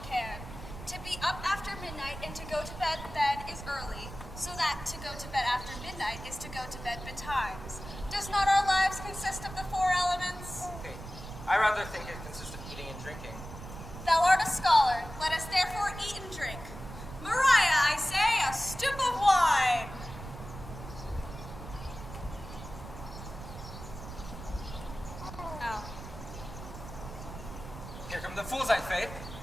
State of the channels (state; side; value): noise; right; rumble, 12 dB below the sound